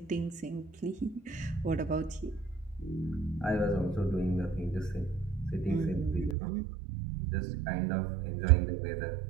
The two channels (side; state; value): left; drops out; at 6.4 s